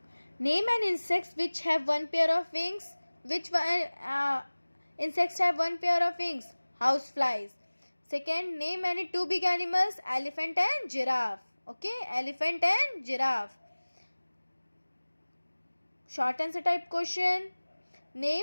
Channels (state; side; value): inverted; both; correlation -1.00